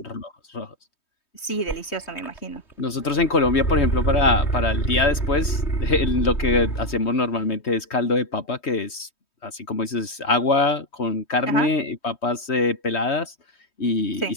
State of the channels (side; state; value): right; late; 3.2 ms